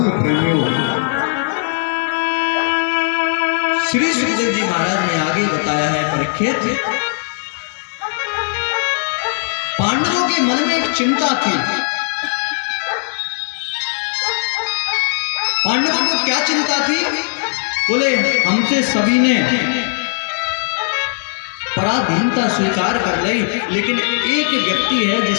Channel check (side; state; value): right; silent; 61 dB below the other